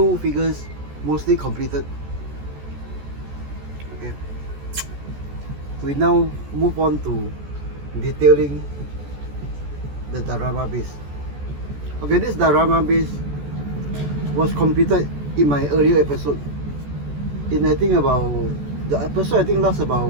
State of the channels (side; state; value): left; late; 14 ms